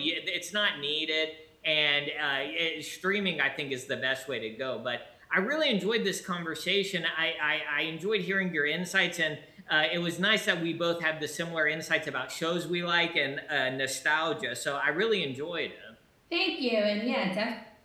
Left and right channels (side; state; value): both; identical; correlation 1.00